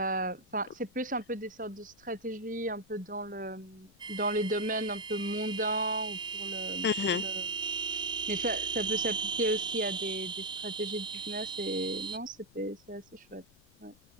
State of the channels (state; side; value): noise; left; rumble, 28 dB below the sound